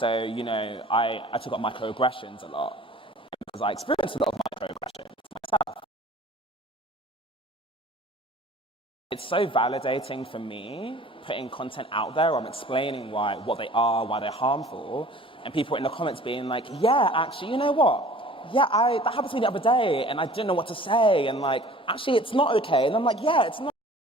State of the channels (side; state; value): both; normal; correlation 0.48